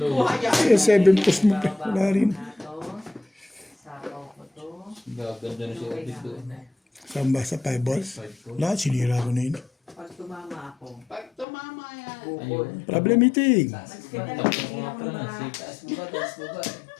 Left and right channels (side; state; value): right; drops out; at 11.5 s